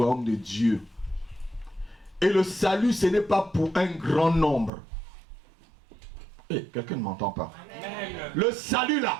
de Dieu. Et le salut, ce n'est pas pour un grand nombre. Quelqu'un ne m'entend pas. Amen. Le salut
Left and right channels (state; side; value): drops out; left; at 4.7 s